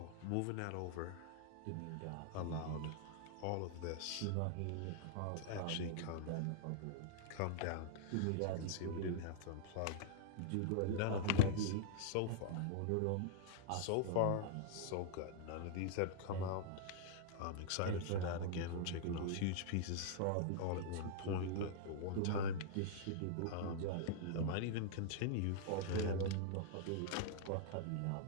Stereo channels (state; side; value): different; both; correlation -0.01